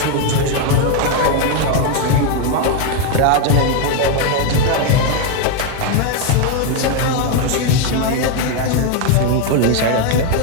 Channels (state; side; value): different; both; correlation 0.01